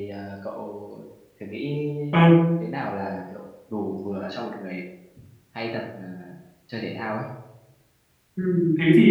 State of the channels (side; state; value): both; identical; correlation 1.00